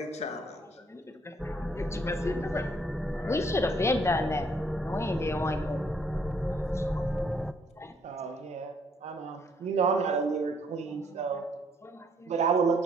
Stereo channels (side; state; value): both; normal; correlation 0.67